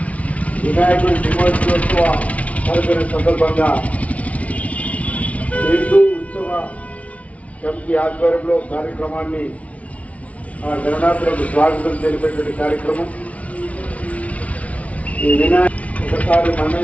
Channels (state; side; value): late; right; 0.066 ms